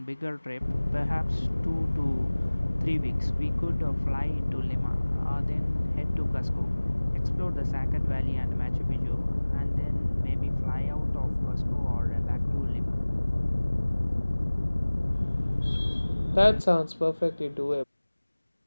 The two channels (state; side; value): inverted; both; correlation -1.00